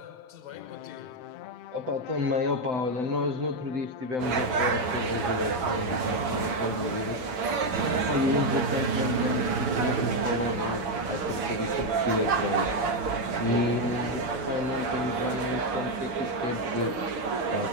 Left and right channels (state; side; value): late; left; 7.9 ms